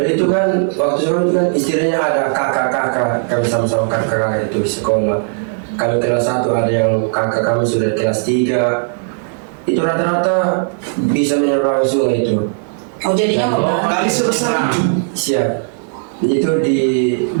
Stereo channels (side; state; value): left; silent; 63 dB below the other